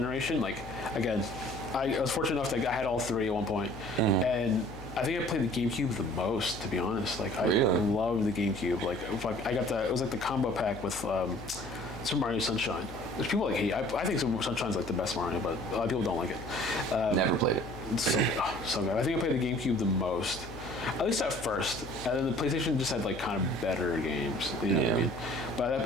Like again, I was fortunate enough that I had all 3 at one point, and I think I played the GameCube the most, to be honest. Like I loved the GameCube. Like I got it was like the combo pack with Super Mario Sunshine, which people like hate. I think Super Sunshine's like the best Mario, but a lot of people don't like it. Never played it. It's so good. I think I played the GameCube the most. At least at first, and then the PlayStation just had like kind of better games. You know what I mean? But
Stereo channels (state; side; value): noise; left; hum, 15 dB below the sound